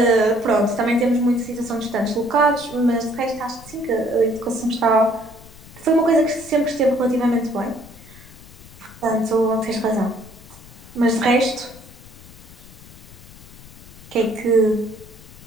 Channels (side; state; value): left; noise; rumble, 20 dB below the sound